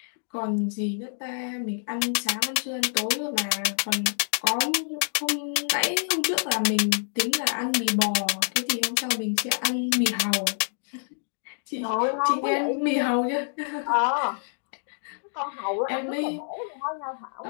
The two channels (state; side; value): silent; right; 60 dB below the other